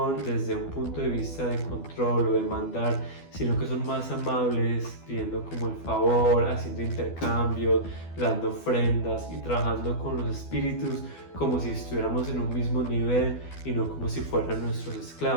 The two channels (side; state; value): right; late; 12 ms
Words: desde un punto de vista de control o de mandar, sino que son más amables, pidiendo como el favor, haciendo intercambios, dando ofrendas y trabajando con los espíritus como si estuviéramos en un mismo nivel y no como si fueran nuestros